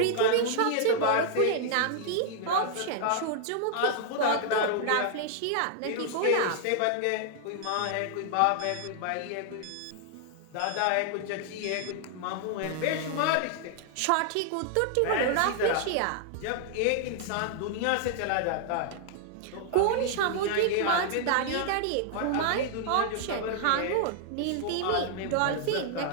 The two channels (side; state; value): both; different; correlation -0.01